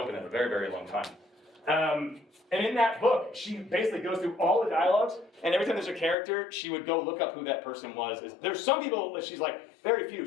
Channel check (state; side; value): drops out; right; at 6.2 s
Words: it in a very, very long time. And in that book, she basically goes through all the dialogues, and every time there's a character, she would go look up who that person was. There's some people that she's like, very few,